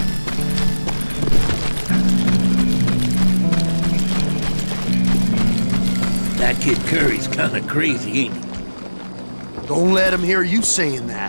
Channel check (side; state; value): both; inverted; correlation -1.00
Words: That kid Curry's kinda crazy, ain't he? Don't let him hear you saying